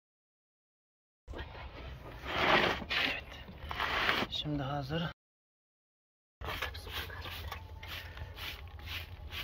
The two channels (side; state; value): both; identical; correlation 1.00